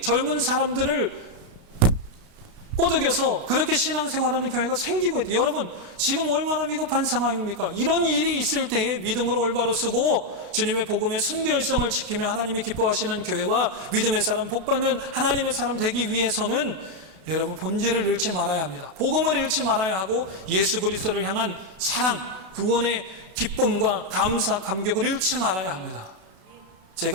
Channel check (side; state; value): left; late; 32 ms